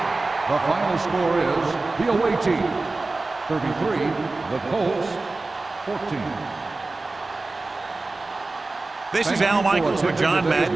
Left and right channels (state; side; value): quieter; left; 3.4 dB